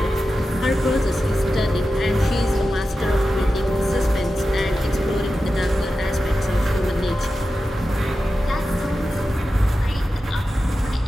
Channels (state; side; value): normal; both; correlation 0.92